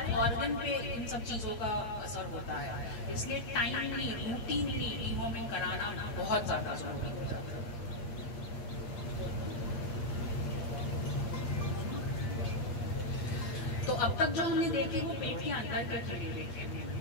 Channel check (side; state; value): right; late; 8.6 ms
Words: ऑर्गन पे इन सब चीज़ों का असर होता है। इसलिए टाइमली रूटीनली डिवॉर्मिंग कराना बहुत ज़्यादा जरूरी हो जाता है। तो अब तक जो हमने देखे वो पेट के अंदर के कीड़े देखे।